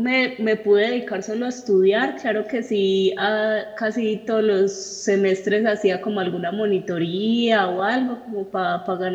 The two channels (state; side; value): identical; both; correlation 1.00